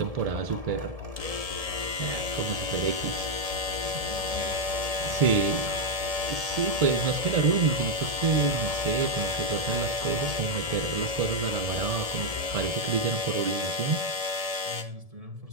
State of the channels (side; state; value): left; late; 1.7 ms